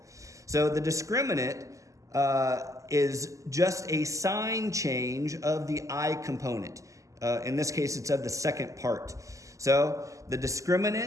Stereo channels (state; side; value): late; left; 0.16 ms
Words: So the discriminant is just a sign change of the I component. In this case, it's of the second part. So the